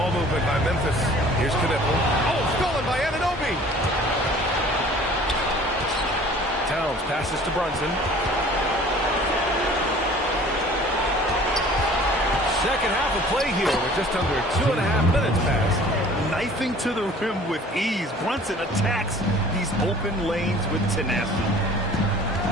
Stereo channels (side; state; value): both; normal; correlation 0.49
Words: movement by Memphis. Here's Knipple. Oh, stolen by Anunoby. Towns passes to Brunson. Second half of play here with just under 2.5 minutes passed. Knifing to the rim with ease. Brunson attacks these open lanes with tenacity.